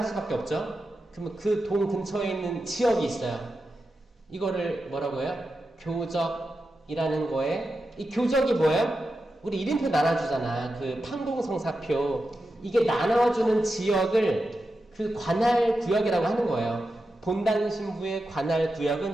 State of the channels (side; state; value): both; normal; correlation 0.90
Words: 없죠? 그러면 그 동 근처에 있는 지역이 있어요. 이거를 뭐라고 해요? 교적이라는 거에 이 교적이 뭐예요? 우리 이름표 나눠주잖아. 그 판공성사표. 이게 나눠주는 지역을 그 관할 구역이라고 하는 거예요. 본당 신부의 관할